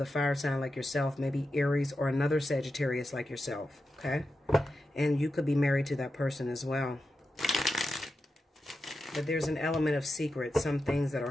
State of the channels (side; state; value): both; normal; correlation 0.90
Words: fire sign like yourself, maybe Aries or another Sagittarius like yourself, okay? And you could be married to that person as well. But there's an element of secret, some things that are